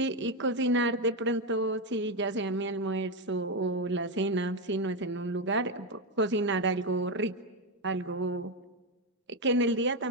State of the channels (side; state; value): both; normal; correlation 0.08